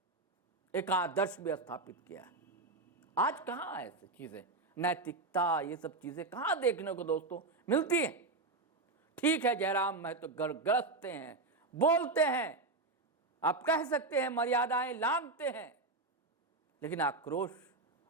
एक आदर्श भी स्थापित किया है। आज कहां ऐसी चीजें, नैतिकता, ये सब चीजें कहां देखने को दोस्तों मिलती हैं। ठीक है, जयराम महतो गरजते हैं, बोलते हैं, आप कह सकते हैं मर्यादाएं लांघते हैं, लेकिन आक्रोश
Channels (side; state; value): left; quieter; 3.4 dB